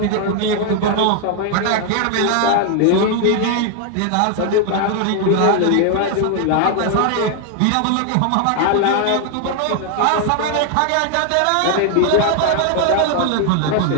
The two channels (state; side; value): different; both; correlation 0.00